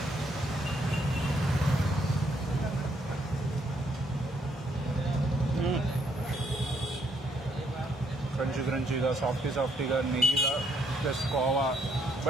క్రంచీగా సాఫ్టీగా నెయ్యిగా ప్లస్ కోవా,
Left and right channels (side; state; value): both; normal; correlation 0.71